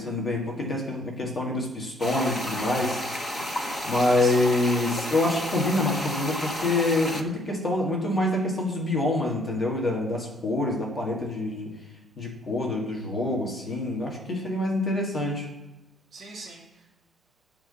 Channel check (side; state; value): both; normal; correlation 0.63